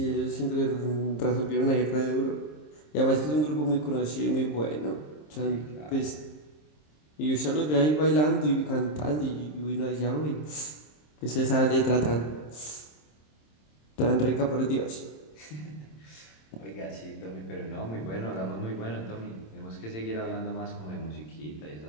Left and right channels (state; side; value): late; right; 26 ms